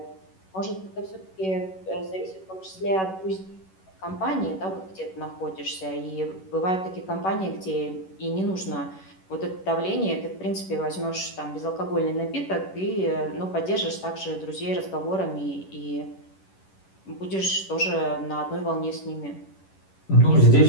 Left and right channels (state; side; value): late; right; 11 ms